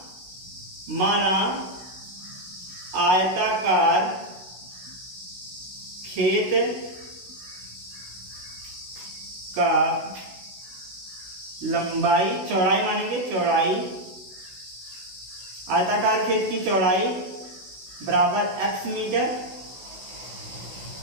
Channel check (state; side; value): late; left; 16 ms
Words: माना आयताकार खेत का लंबाई, चौड़ाई मानेंगे, चौड़ाई, आयताकार खेत की चौड़ाई बराबर x मीटर।